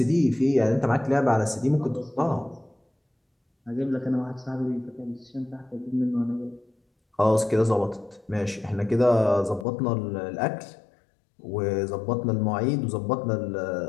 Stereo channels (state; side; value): drops out; right; at 9.7 s